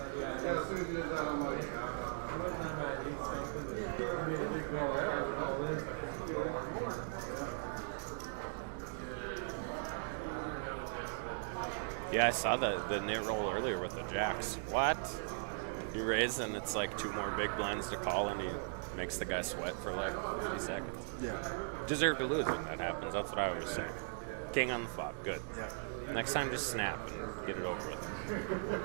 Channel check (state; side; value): silent; left; digital silence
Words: Yeah, I saw the net roll earlier with the jacks. What? You raise and it's like 2 more big blinds to call and he makes the guy sweat for like 50 seconds. Yeah. Deserve to lose when that happens. That's what I always say. King on the flop. Good. Next time, just snap and get it over with.